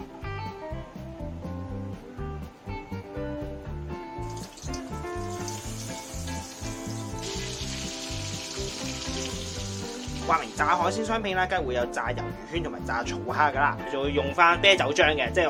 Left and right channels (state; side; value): identical; both; correlation 1.00